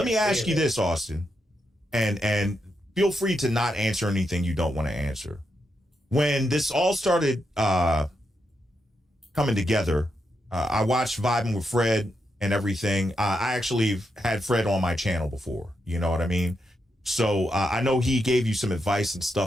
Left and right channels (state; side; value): normal; both; correlation 0.83